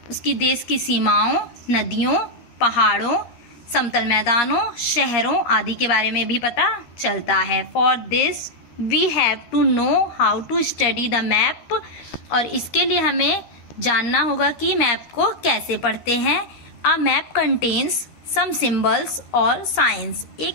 उसकी देश की सीमाओं, नदियों, पहाड़ों, समतल मैदानों, शहरों आदि के बारे में भी पता चलता है। For this we have to know how to study the map. और इसके लिए हमें जानना होगा कि मैप को कैसे पढ़ते हैं। A map contains some symbols और साइंस। एक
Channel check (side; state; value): right; late; 13 ms